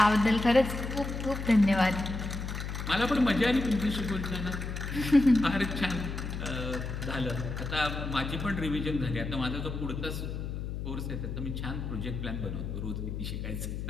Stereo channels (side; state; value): left; noise; hum, 5 dB below the sound